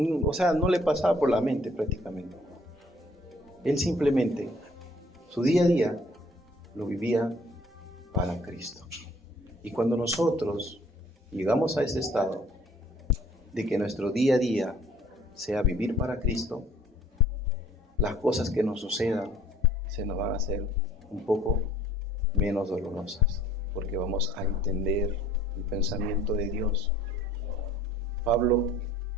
o sea, no le pasaba por la mente prácticamente. Él simplemente, su día a día, lo vivía para Cristo. Y cuando nosotros llegamos a ese estado de que nuestro día a día sea vivir para Cristo, las cosas que nos sucedan se nos van a hacer un poco menos dolorosas, porque vamos a entender el pensamiento de Dios. Pablo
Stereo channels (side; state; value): both; normal; correlation 0.57